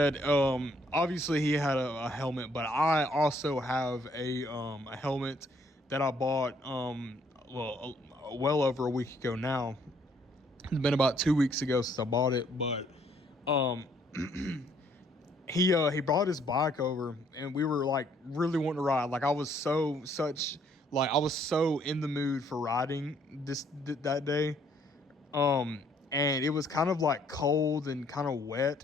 obviously he had a helmet, but I also have a helmet that I bought well over a week ago now. It's been about 2 weeks ago since I bought it, but um he brought his bike over, and we were like really wanting to ride. Like I was so in the mood for riding that day. And it was kind of like cold and kind of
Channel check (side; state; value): both; normal; correlation 0.66